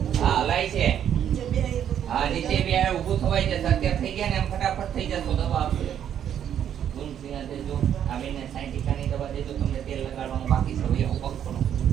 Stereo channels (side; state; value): left; quieter; 9.6 dB